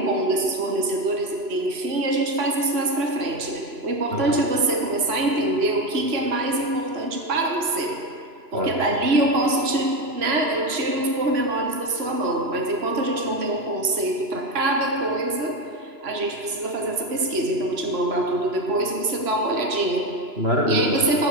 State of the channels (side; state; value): left; late; 3.0 ms